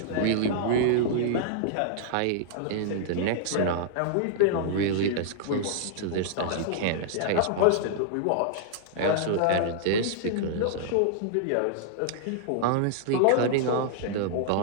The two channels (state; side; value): different; both; correlation -0.01